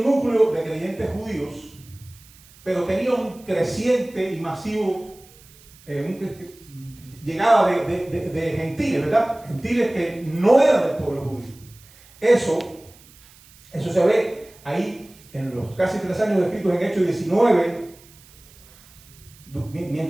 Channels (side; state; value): right; noise; hiss, 25 dB below the sound